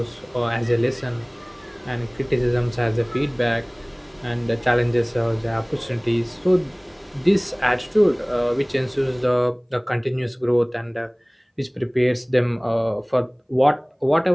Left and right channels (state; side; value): identical; both; correlation 1.00